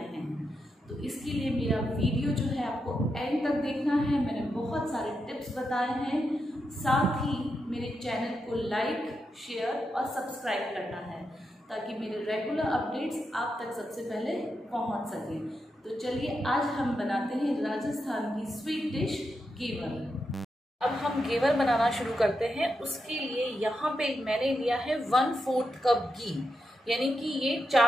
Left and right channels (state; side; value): normal; both; correlation 0.86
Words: हैं। तो इसके लिए मेरा वीडियो जो है आपको एंड तक देखना है। मैंने बहुत सारे टिप्स बताए हैं, साथ ही मेरे चैनल को लाइक, शेयर और सब्सक्राइब करना है ताकि मेरे रेगुलर अपडेट्स आप तक सबसे पहले पहुंच सके। तो चलिए आज हम बनाते हैं राजस्थान की स्वीट डिश घेवर। अब हम घेवर बनाना शुरू करते हैं। उसके लिए यहाँ पे मैंने लिया है 1/4 कप घी, यानी कि ये